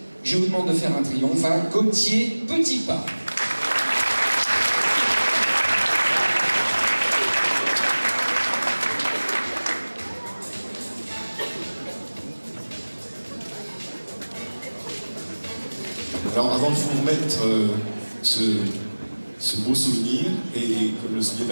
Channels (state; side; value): inverted; both; correlation -1.00